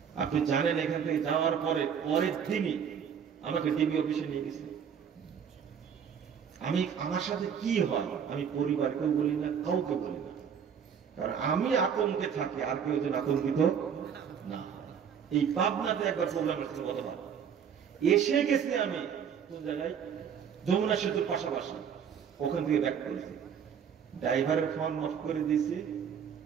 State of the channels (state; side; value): quieter; left; 7.7 dB